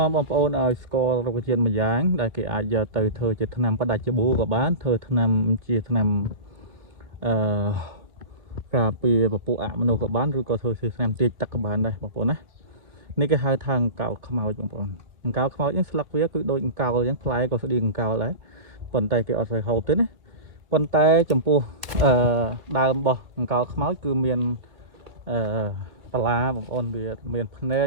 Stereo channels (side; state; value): left; late; 2.2 ms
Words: ាំបងប្អូនឲ្យស្គាល់រុក្ខជាតិមួយយ៉ាងដែលគេអាចយកទៅធ្វើជាថ្នាំផ្ដាច់ច្បូក៏បានធ្វើថ្នាំជាថ្នាំការពារពពួកអមនុស្សក៏បានឬក៏ធ្វើជាថ្នាំទាញទឹកក៏បានដែរបងប្អូនណានេះគេហៅថាអង្កោលខ្មោចបងប្អូនអង្កោលខ្មោចនេះស្លឹកវាគឺដូចអង្កោលអញ្ចឹងផ្លែក៏ស្តៀងអង្កោលដែរប៉ុន្តែគេអត់សូវហូបទេណាប៉ុន្តែចំពោះដើមរបស់អង្កោលខ្មោចគឺមានបលាបងប្អូនវាមានភ្នែ